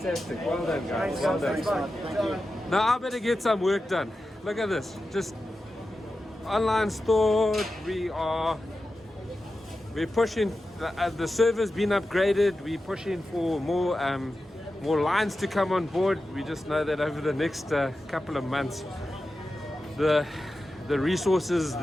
Well done, guys. Well done. Now I better get some work done. Look at this. Just online store. We're pushing. The server's been upgraded. We're pushing for more lines to come on board. We just know that over the next couple of months, the resources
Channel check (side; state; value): both; normal; correlation 0.92